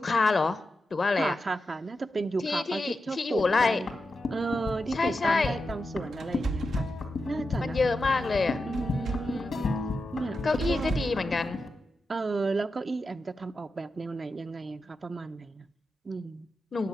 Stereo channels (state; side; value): normal; both; correlation 0.89